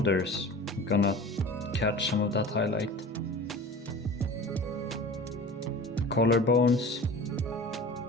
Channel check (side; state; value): both; normal; correlation 0.38